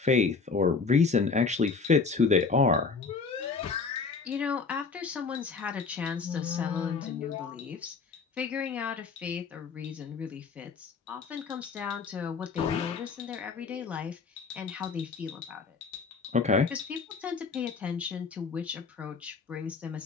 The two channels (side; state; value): right; quieter; 4.9 dB